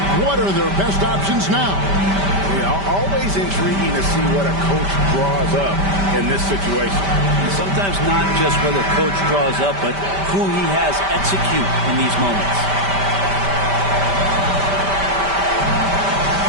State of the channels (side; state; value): left; late; 5.1 ms